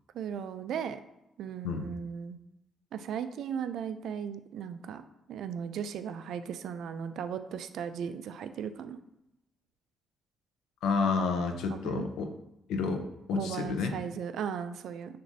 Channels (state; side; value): normal; both; correlation 0.57